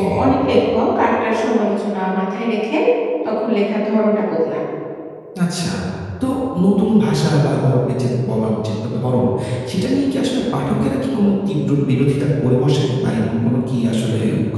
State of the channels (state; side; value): identical; both; correlation 1.00